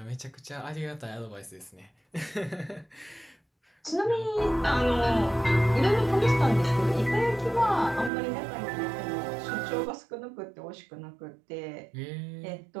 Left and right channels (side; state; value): left; drops out; at 8.1 s